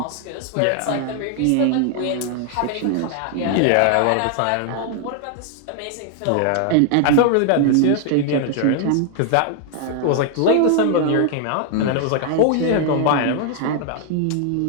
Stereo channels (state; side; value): different; both; correlation 0.00